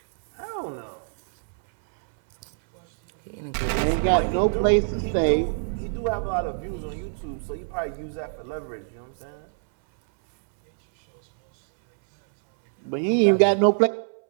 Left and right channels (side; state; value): left; silent; 62 dB below the other